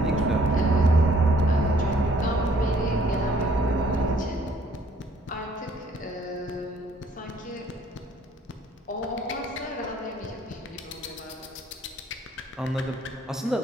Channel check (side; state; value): both; normal; correlation 0.62